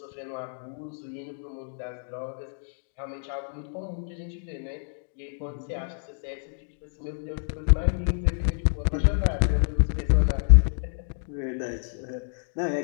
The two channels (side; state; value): right; silent; digital silence